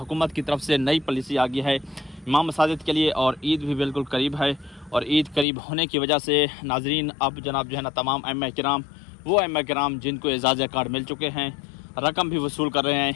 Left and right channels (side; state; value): right; drops out; at 5.5 s